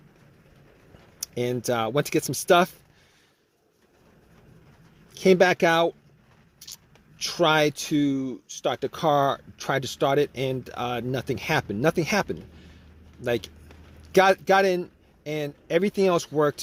went to get some stuff. Came back out, tried to start the car, tried to start it, and nothing happened. Nothing happened. Like got in, and everything else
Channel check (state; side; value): identical; both; correlation 1.00